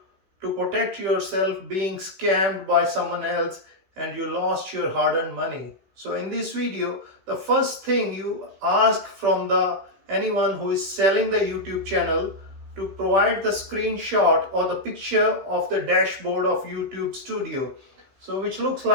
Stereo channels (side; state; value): left; late; 16 ms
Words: to protect yourself being scammed by someone else and you lost your hard-earned money. So in this video, the first thing you ask from the anyone who is selling the YouTube channel to provide the screenshot or the picture of the dashboard of YouTube studio. So which looks